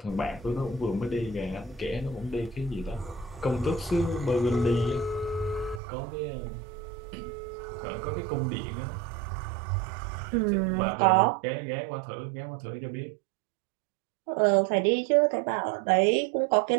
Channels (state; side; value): drops out; left; at 5.8 s